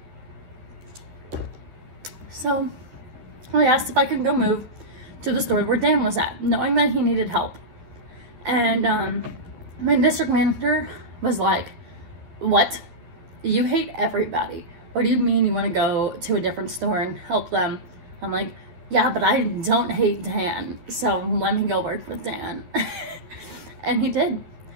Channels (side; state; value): left; late; 12 ms